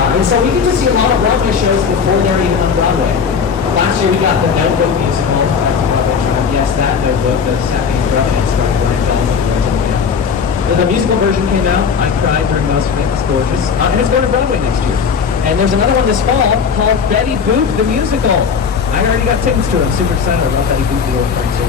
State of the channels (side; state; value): right; quieter; 6.2 dB